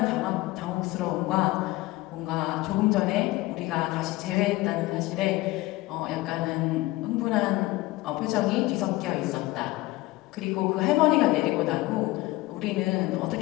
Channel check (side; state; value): right; quieter; 19.5 dB